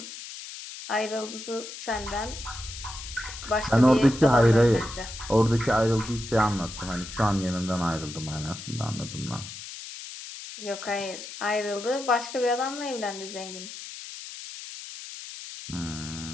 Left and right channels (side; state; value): left; noise; hiss, 11 dB below the sound